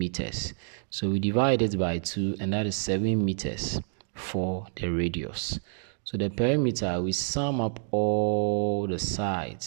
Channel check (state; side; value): silent; left; digital silence